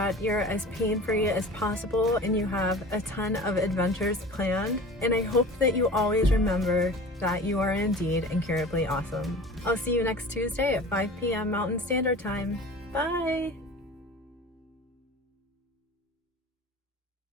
you're as pain-free as possible and you have a ton of adventures planned. And I hope that you always remember that you are indeed incurably awesome. I'll see you next Tuesday at 5 p.m. Mountain Standard Time. Bye!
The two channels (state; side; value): normal; both; correlation 0.39